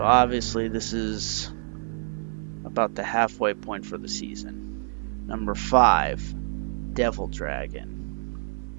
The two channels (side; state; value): left; silent; 58 dB below the other